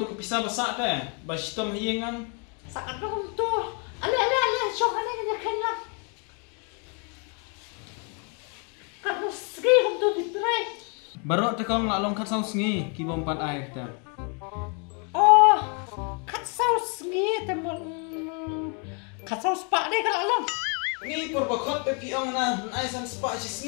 kepisa basak teh. Basitom hiyengan. Saan naman to? Ali. Siya ka na ganyan lang. Kano sige kung to ditry. Barok teh Kong lalong kat saus ngi kibom pan air teh. Oh, temen kasau sepak deh kalau long. Ni perbakot pe piong na ai san spa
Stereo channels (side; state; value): right; quieter; 37.2 dB